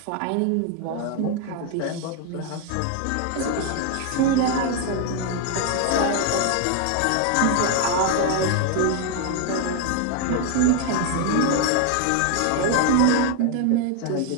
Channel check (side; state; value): both; different; correlation 0.01